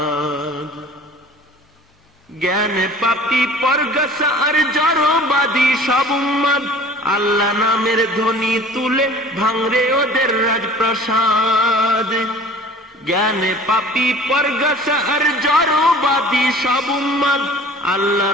জ্ঞানে পাপী পরগাছা আর জড়বাদী সব উম্মাদ, আল্লাহ নামের ধ্বনি তুলে ভাঙরে ওদের রাজপ্রাসাদ। জ্ঞানে পাপী পরগাছা আর জড়বাদী সব উম্মাদ, আল্লাহ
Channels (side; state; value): both; normal; correlation 0.45